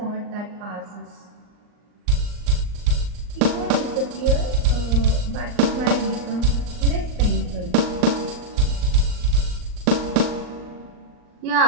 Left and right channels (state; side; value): late; left; 39 ms